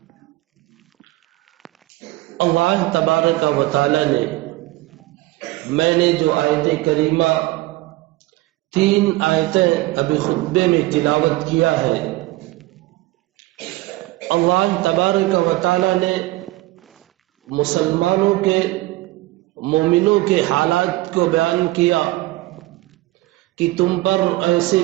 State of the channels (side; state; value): left; quieter; 18.8 dB